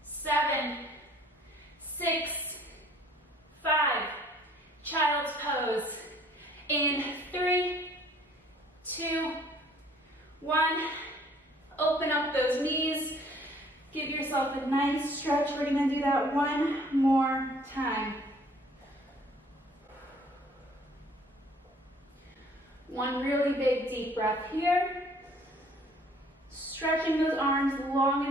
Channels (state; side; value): normal; both; correlation 0.57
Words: 7, 6, 5. Child's pose. In 3, 2, 1. Open up those knees. Give yourself a nice stretch. We're gonna do that that one more time. One really big deep breath here. Stretching those arms long